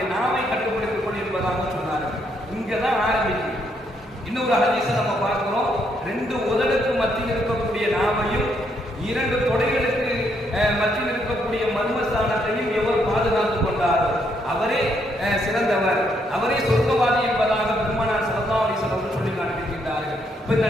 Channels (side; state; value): both; normal; correlation 0.74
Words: நாவை கட்டுப்படுத்திக் கொண்டிருப்பதாக சொன்னார்கள். இங்கதான் ஆரம்பிக்கும். இன்னொரு ஹதீஸை நம்ம பார்க்கிறோம். 2 உதடுக்கு மத்தியில் இருக்கக்கூடிய நாவையும் 2 தொடைகளுக்கு மத்தியில் இருக்கக்கூடிய மர்மஸ்தானத்தையும் எவர் பாதுகாத்துக் கொண்டாரோ அவரே சிறந்தவர், அவரே சொர்க்கவாதி என்பதாக பெருமானார் ஸல்லல்லாஹு அலைஹி வஸல்லம் சொல்லி காண்பிக்கின்றார்கள். இப்ப இந்த